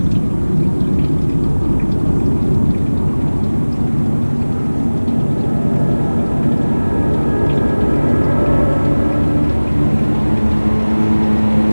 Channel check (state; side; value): inverted; both; correlation -1.00